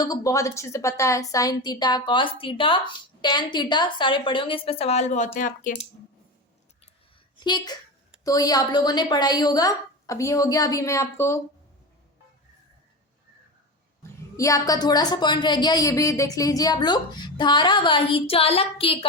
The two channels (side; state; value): both; normal; correlation 0.23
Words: को बहुत अच्छे से पता है। Sine theta, cos theta, tan theta सारे पढ़े होंगे, इस पर सवाल बहुत हैं आपके। ठीक, तो ये आप लोगों ने पढ़ा ही होगा। अब ये हो गया, अभी मैं आपको ये आपका थोड़ा सा पॉइंट रह गया, ये भी देख लीजिए आप लोग। धारावाही चालक के